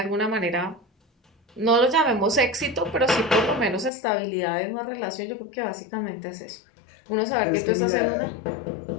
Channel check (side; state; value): right; drops out; at 3.9 s